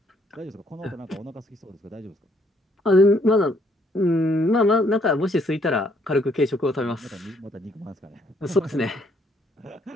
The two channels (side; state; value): both; normal; correlation 0.68